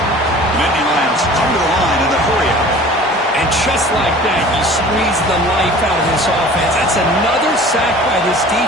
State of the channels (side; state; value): both; normal; correlation 0.44